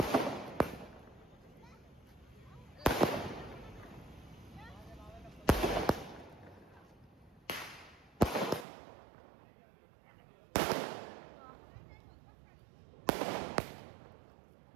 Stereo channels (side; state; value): left; drops out; at 8.7 s